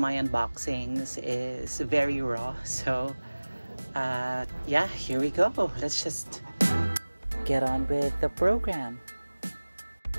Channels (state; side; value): inverted; both; correlation -1.00